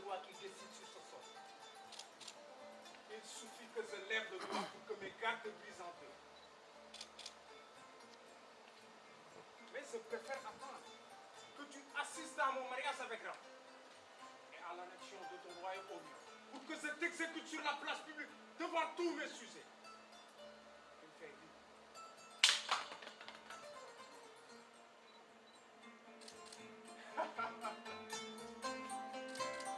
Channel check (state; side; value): identical; both; correlation 1.00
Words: roi qui décide sur ce sort. Il suffit que je lève le doigt pour que mes gardes brisent en deux. Mais je préfère attendre que tu assistes à mon mariage avec Ram et à l'annexion de ton royaume au mien, pour que je t'exécute sur la place publique devant tous mes sujets. Tu me fais rire.